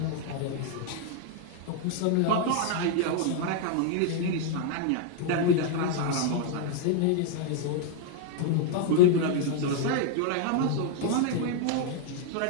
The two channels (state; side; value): different; both; correlation 0.00